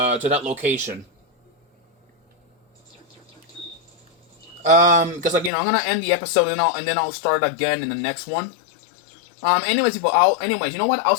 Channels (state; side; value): drops out; right; at 5.5 s